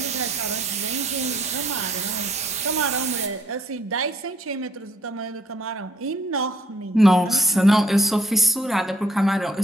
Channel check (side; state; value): both; normal; correlation 0.66